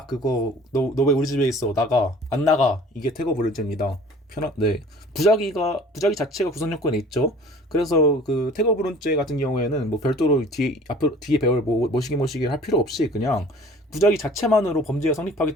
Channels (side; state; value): both; normal; correlation 0.48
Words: 그거 너 왜 우리 집에 있어? 나가. 안 나가. 이게 태거 불응죄입니다. 네. 부작위 자체가 구성 요건에 있죠. 그래서 그 태거 불응죄 같은 경우에는 별도로 뒤에 배울 모시기를 할 필요 없이 그냥 부작위 자체만으로 범죄가